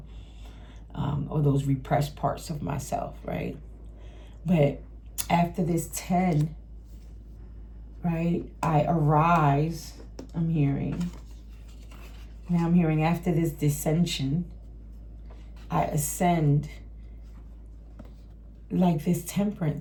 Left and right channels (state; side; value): identical; both; correlation 1.00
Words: or those repressed parts of myself, right? But after this 10, right, I arise, I'm hearing. Now I'm hearing after this dissension, I ascend, like this